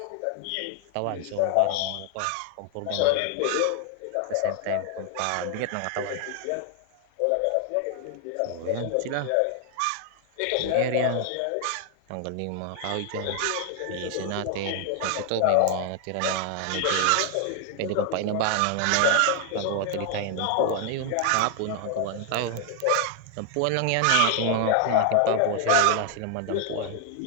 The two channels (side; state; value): both; different; correlation 0.00